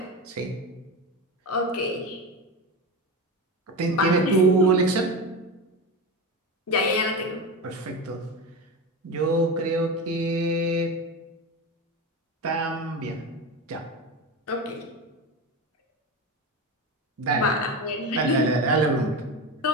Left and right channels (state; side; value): normal; both; correlation 0.22